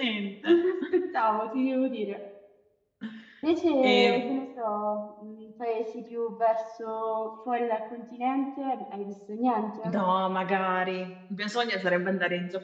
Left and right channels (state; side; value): identical; both; correlation 1.00